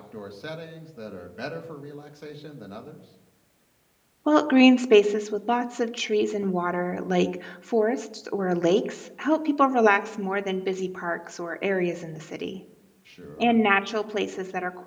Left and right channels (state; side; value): identical; both; correlation 1.00